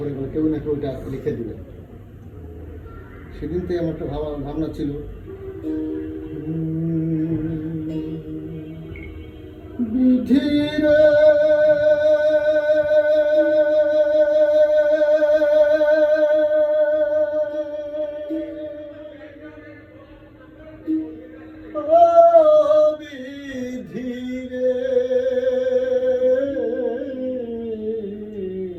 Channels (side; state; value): both; identical; correlation 1.00